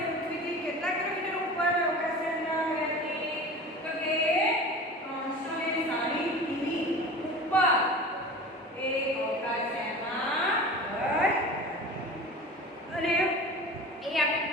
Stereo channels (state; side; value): normal; both; correlation 0.36